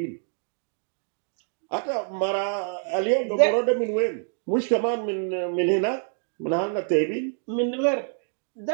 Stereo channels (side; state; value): left; silent; 61 dB below the other